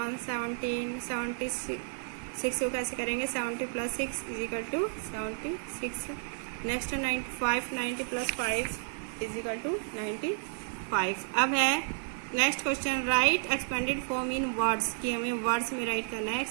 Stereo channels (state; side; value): silent; left; 57 dB below the other